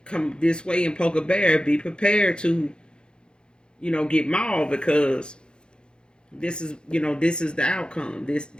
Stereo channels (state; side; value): late; right; 0.050 ms